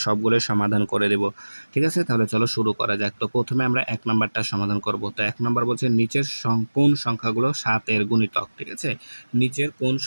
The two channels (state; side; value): inverted; both; correlation -1.00